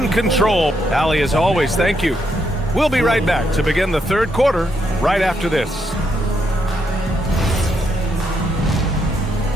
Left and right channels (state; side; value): normal; both; correlation 0.78